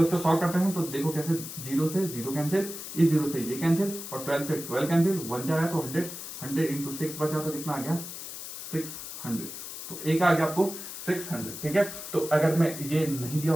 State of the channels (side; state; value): left; noise; hiss, 9 dB below the sound